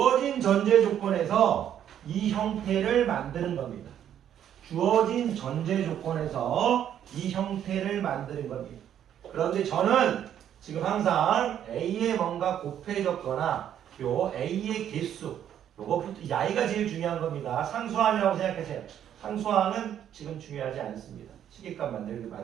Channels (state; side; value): quieter; left; 10.0 dB